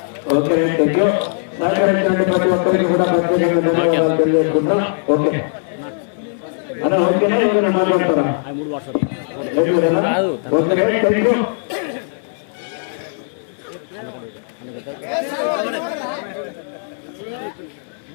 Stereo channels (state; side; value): silent; right; digital silence